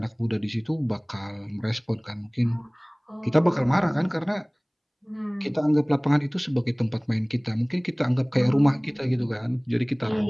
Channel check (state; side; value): identical; both; correlation 1.00